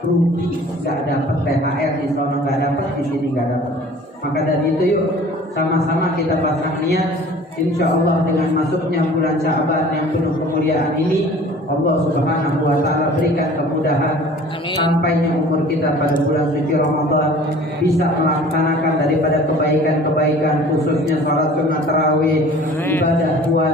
Rugi, gak dapat THR di sana, gak dapat di sini, gak dapat. Maka dari itu yuk sama-sama kita pasang niat, insya Allah dengan masuknya bulan Sya'ban yang penuh kemuliaan ini, Allah Subhanahu wa taala berikan kemudahan. Amin. Sampainya umur kita pada bulan suci Ramadan bisa melaksanakan daripada kebaikan-kebaikan, khususnya salat sunat tarawih, ibadah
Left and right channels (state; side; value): normal; both; correlation 0.47